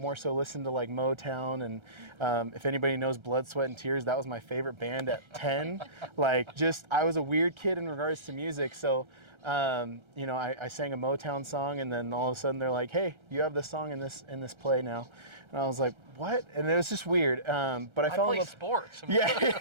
so listened to like Motown, and if anybody knows Blood, Sweat, and Tears, that was my favorite band at 10. Like, I was a weird kid in regards to music, so you know, I sang a Motown song, and then all of a sudden they're like, hey, you have this song in this play now. And I was like, what? And it was just weird. But I fell in love. Sports. Yeah,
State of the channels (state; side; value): late; left; 1.3 ms